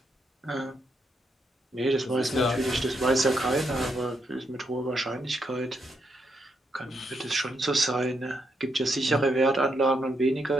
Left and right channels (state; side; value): normal; both; correlation 0.79